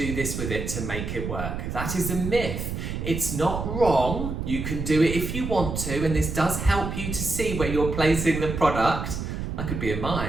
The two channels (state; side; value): noise; right; rumble, 4 dB below the sound